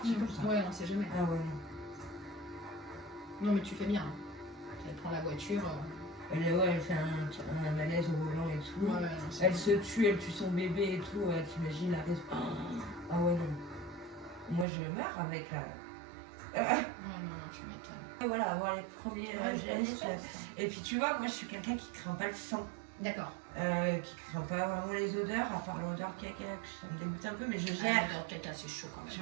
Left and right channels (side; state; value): left; drops out; at 14.7 s